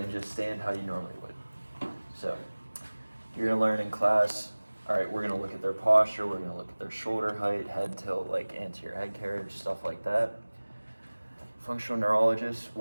just stand how you normally would. So you're going to learn in class, all right, we're going to look at their posture, we're going to look at their shoulder height, head tilt, like anterior head carriage, stuff like that. Functional neurologists,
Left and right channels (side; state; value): both; inverted; correlation -1.00